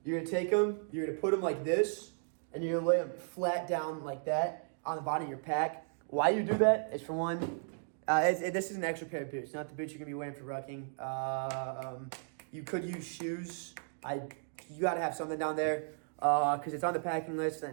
You're gonna take them. You're gonna put them like this, and you're gonna lay them flat down like that on the bottom of your pack. Why you do that is for one. This is an extra pair of boots, not the boots you're gonna be wearing for rucking. You could use shoes. You gotta have something down there because it's on the packing list.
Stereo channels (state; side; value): silent; left; digital silence